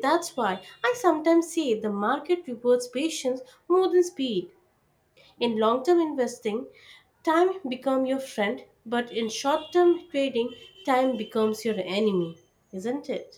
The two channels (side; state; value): both; identical; correlation 1.00